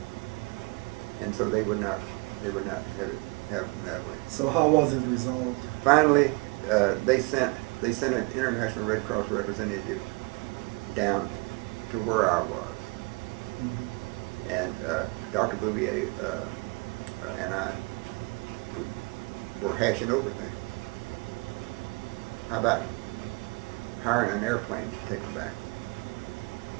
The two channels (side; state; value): left; quieter; 28.1 dB